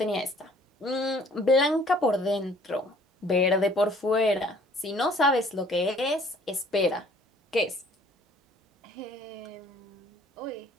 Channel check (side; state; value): both; normal; correlation 0.56